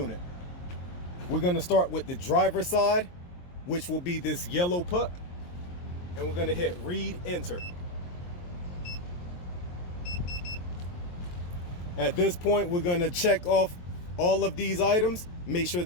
We're going to start with the driver's side, which will be this yellow puck, and we're going to hit read enter. At this point, we're going to check off all of these items, make sure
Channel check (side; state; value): right; late; 22 ms